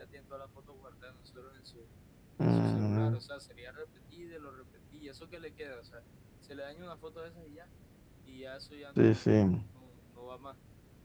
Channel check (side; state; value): both; identical; correlation 1.00